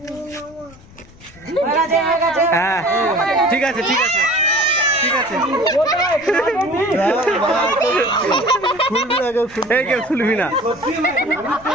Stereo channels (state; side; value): noise; left; rumble, 24 dB below the sound